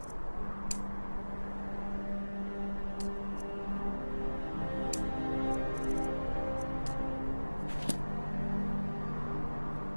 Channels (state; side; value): inverted; both; correlation -1.00